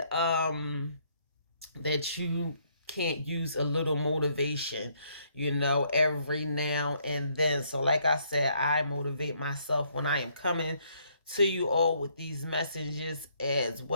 that you can't use a little motivation, you know, every now and then. So like I said, I motivate myself when I am coming to you all with these messages as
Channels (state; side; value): inverted; both; correlation -0.69